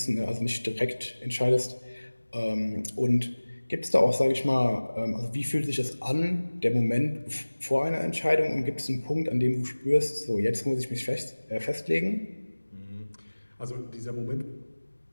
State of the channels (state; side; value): inverted; both; correlation -1.00